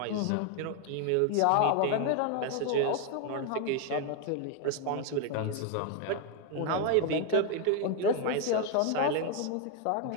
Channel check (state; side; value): different; both; correlation 0.01